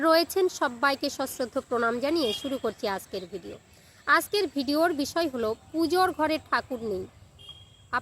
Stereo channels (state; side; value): identical; both; correlation 1.00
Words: রয়েছেন, সবাইকে সশ্রদ্ধ প্রণাম জানিয়ে শুরু করছি আজকের ভিডিও। আজকের ভিডিওর বিষয় হলো পুজোর ঘরে ঠাকুর নেই,